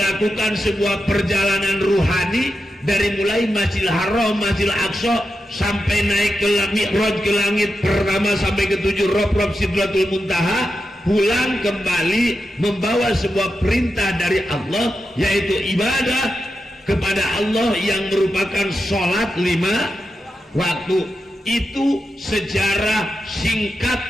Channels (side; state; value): both; normal; correlation 0.89